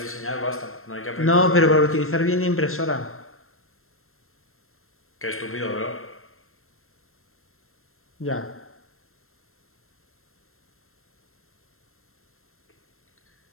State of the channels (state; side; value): late; right; 0.62 ms